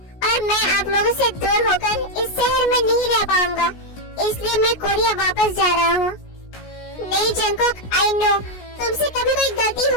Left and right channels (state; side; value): late; right; 16 ms